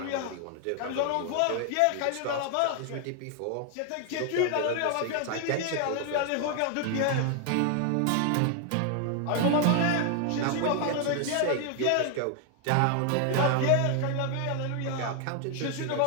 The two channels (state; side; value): different; both; correlation 0.00